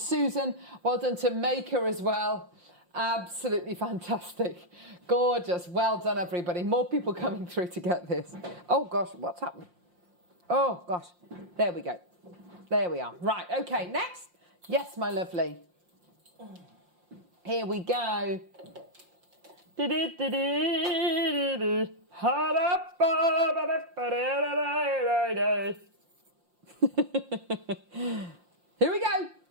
Well done to Maker as well. Absolutely fantastic. Gorgeous. Well done, everybody. More people coming through to get this. Oh, gosh, what's happened? Oh, gosh. There we go. There we are. Right, okay, next. Yes, my lovely. Here we go. Here we go.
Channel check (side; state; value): left; late; 5.8 ms